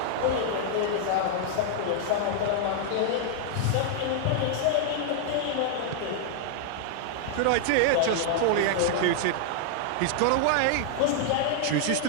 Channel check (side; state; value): both; different; correlation -0.01